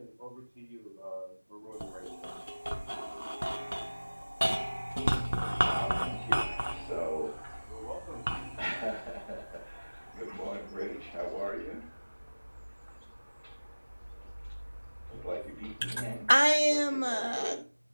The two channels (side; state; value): both; inverted; correlation -1.00